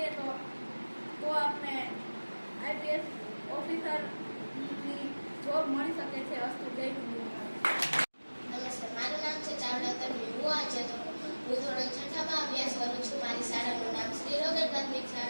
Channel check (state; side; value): inverted; both; correlation -1.00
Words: તો આપણે આઈપીએસ ઓફિસરની જોબ મળી શકે છે. અસ્તુ જય હિન્દ. નમસ્તે, મારું નામ છે ચાવડા તન્વી. હું ધોરણ 6માં અભ્યાસ કરું છું. મારી શાળાનું નામ શ્રી રોકેલ પ્રાથમિક